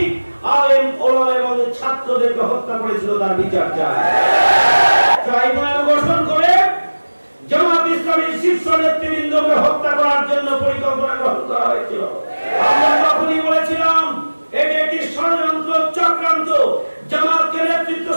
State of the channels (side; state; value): both; inverted; correlation -1.00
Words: আলেম ওলামা এবং ছাত্রদেরকে হত্যা করেছিল, তার বিচার চাই। ট্রাইব্যুনাল গঠন করে জামাত ইসলামীর শীর্ষ নেতৃবৃন্দকে হত্যা করার জন্য পরিকল্পনা গ্রহণ করা হয়েছিল। আমরা তখনই বলেছিলাম এটি একটি ষড়যন্ত্র, চক্রান্ত, জামাতকে নেতৃত্ব